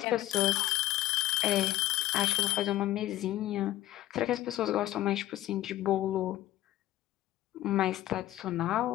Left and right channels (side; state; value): right; quieter; 14.9 dB